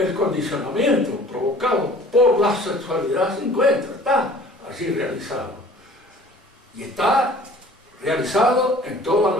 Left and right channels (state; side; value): normal; both; correlation 0.48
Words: condicionamiento provocado por la sexualidad se encuentra, está así realizado. Y está realizado en toda